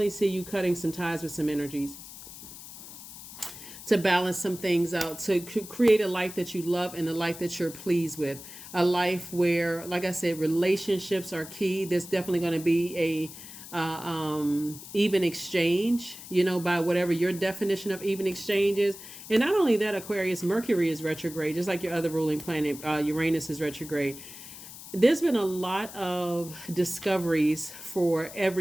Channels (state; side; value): noise; left; hiss, 14 dB below the sound